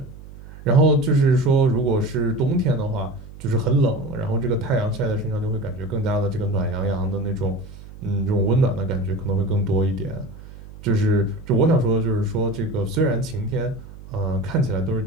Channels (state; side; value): noise; right; hum, 17 dB below the sound